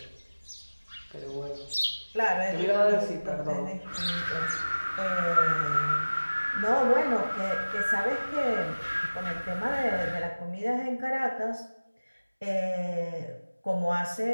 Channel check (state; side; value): inverted; both; correlation -1.00